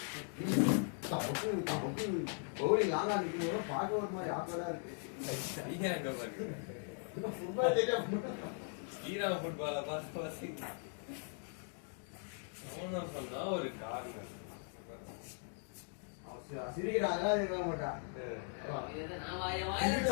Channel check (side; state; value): right; silent; 52 dB below the other